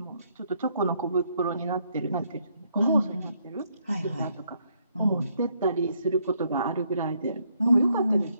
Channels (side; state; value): both; inverted; correlation -0.72